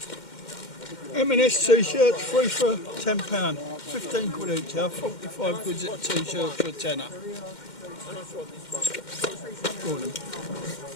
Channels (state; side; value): late; right; 2.1 ms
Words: M&S t-shirts free for £10. 15 quid each, 45 quid a t-shirt for a tenner. Go on then.